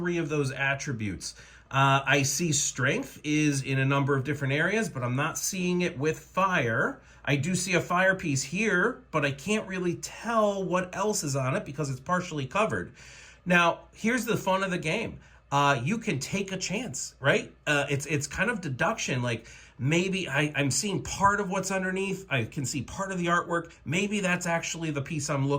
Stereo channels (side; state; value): both; identical; correlation 1.00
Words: of those attributes? I see strength is in a number of different areas, but I'm not seeing it with fire. I do see a fire piece here, but I can't really tell what else is on it because it's partially covered. Now, here's the fun of the game. You can take a chance, right? It's kind of deduction. Like maybe I'm seeing part of what's underneath. I can see part of the artwork. Maybe that's actually the piece I'm